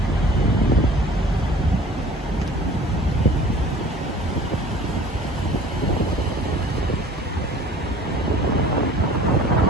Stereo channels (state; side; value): normal; both; correlation 0.47